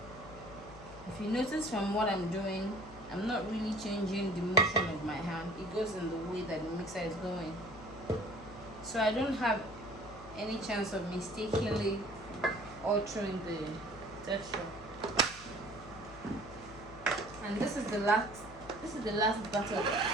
If you notice from what I'm doing, I'm not really changing the motion of my hand. It goes in the way that the mixer is going. So I don't have any chance of mistakenly altering the texture. And this is the last batter.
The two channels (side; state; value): left; noise; hum, 18 dB below the sound